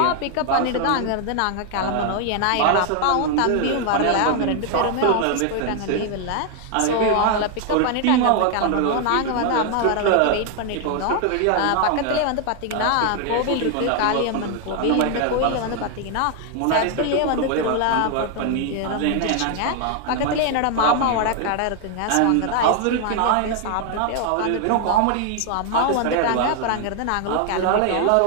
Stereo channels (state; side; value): different; both; correlation 0.00